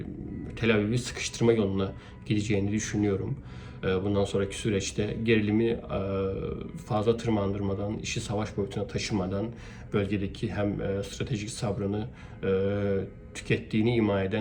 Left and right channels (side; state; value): both; identical; correlation 1.00